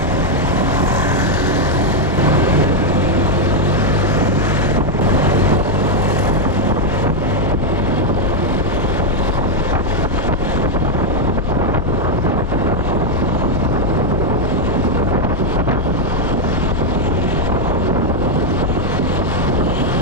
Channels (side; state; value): both; normal; correlation 0.01